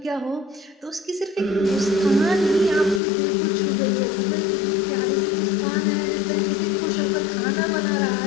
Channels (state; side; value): drops out; right; at 3.0 s